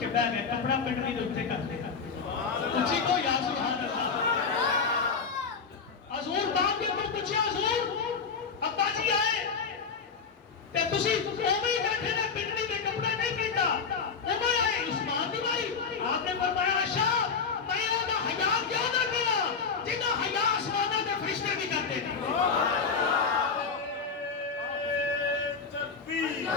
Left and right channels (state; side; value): quieter; right; 5.5 dB